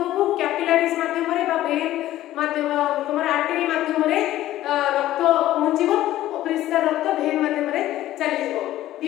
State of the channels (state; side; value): quieter; right; 14.2 dB